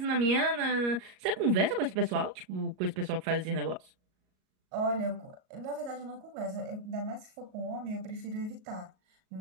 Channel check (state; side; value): late; left; 38 ms